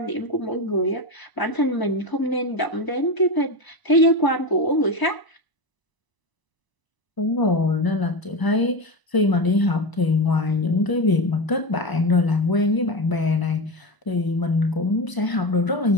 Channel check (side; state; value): right; late; 1.0 ms